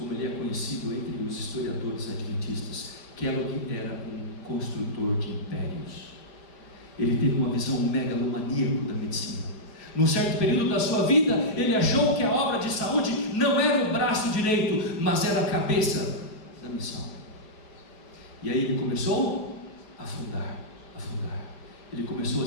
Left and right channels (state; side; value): late; right; 5.1 ms